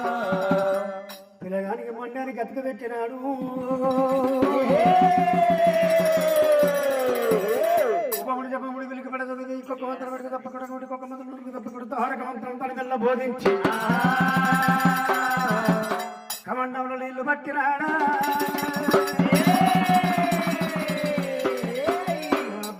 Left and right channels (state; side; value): identical; both; correlation 1.00